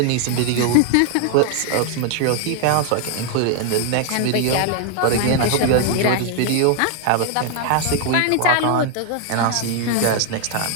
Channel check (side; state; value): both; different; correlation 0.00